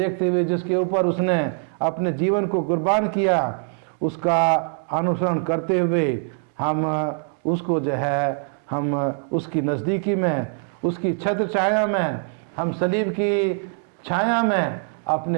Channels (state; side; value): silent; left; 61 dB below the other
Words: हुए जिसके ऊपर उसने अपने जीवन को कुर्बान किया, उसका अनुसरण करते हुए हम उसको जो है हम उसकी नज़दीकी में, उसकी छत्र छाया में, हम सलीब की छाया में